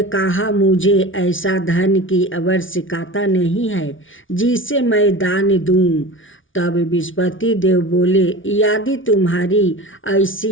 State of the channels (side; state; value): right; late; 0.57 ms